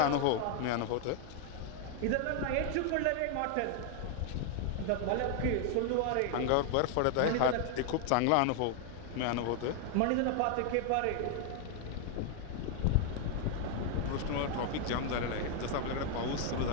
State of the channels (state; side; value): different; both; correlation 0.00